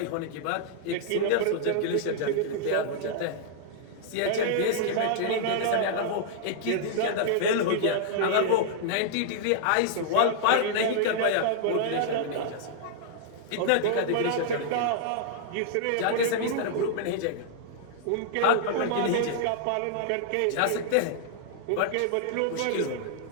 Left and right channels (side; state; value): both; different; correlation -0.01